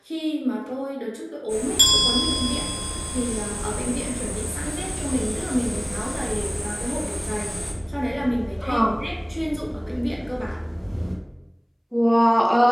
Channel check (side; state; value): both; identical; correlation 1.00